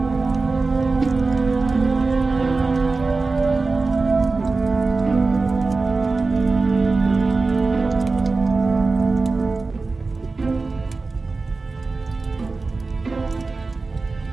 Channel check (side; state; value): left; quieter; 3.8 dB